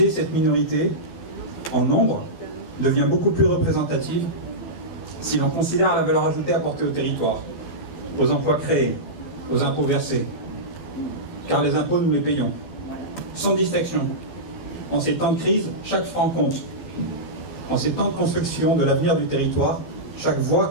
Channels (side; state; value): right; late; 12 ms